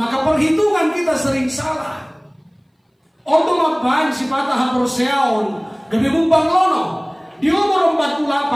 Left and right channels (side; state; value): both; identical; correlation 1.00